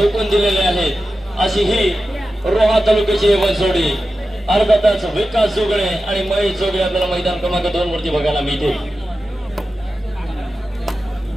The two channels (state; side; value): normal; both; correlation 0.93